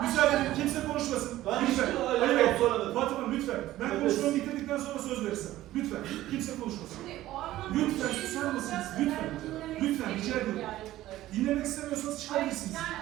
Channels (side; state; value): left; quieter; 15.1 dB